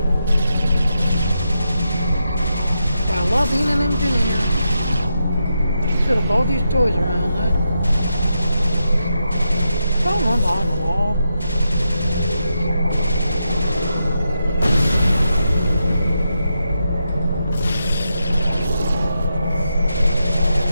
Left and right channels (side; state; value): both; inverted; correlation -0.85